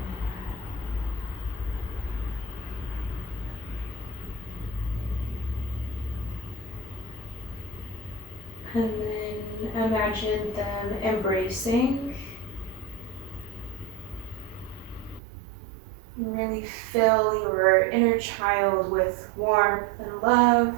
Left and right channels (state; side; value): drops out; left; at 15.2 s